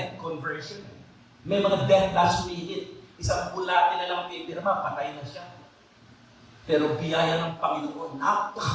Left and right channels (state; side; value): identical; both; correlation 1.00